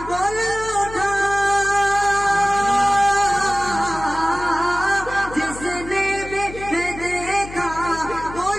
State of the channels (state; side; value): noise; left; hum, 14 dB below the sound